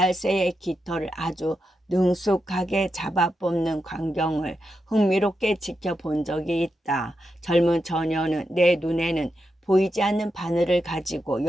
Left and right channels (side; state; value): both; normal; correlation 0.87